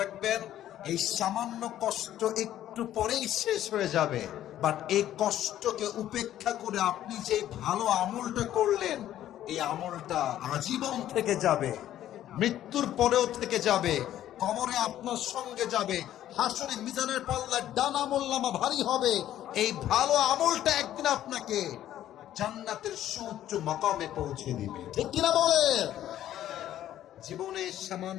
এই সামান্য কষ্ট একটু পরেই শেষ হয়ে যাবে, বাট এই কষ্টকে উপেক্ষা করে আপনি যে ভালো আমলটা করলেন, এই আমলটা আজীবন থেকে যাবে, মৃত্যুর পরেও থেকে যাবে, কবরে আপনার সঙ্গে যাবে, হাসরে মিজানের পাল্লা ডান আমলনামা ভারী হবে। এই ভালো আমলটা একদিন আপনাকে জান্নাতের সুউচ্চ মাকামে পৌঁছে দিবে, ঠিক কিনা বলেন? জীবনে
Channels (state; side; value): quieter; right; 12.3 dB